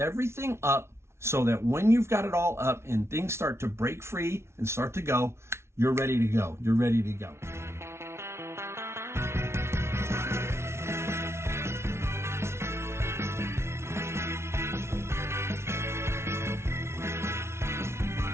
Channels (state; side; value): late; left; 0.13 ms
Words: up, so that when you've got it all up and things start to break free and start to go, you're ready to go. You're ready to go.